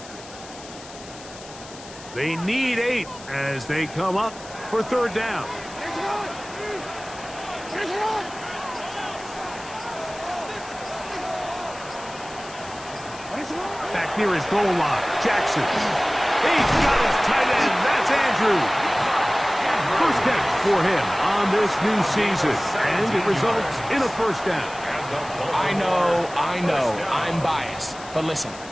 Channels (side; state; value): left; noise; hiss, 17 dB below the sound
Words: They need 8 as they come up for 3rd down. Back near his goal line, Jackson. He's got his tight end. That's Andrew. First catch for him on this new season, and it results in a 1st down. I know, I'm biased. But listen,